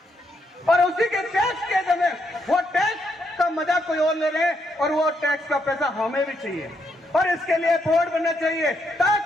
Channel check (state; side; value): normal; both; correlation 0.77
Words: और उसी के टैक्स के समय वो टैक्स का मजा कोई और ले रहे हैं, और वो टैक्स का पैसा हमें भी चाहिए। और इसके लिए बोर्ड बनना चाहिए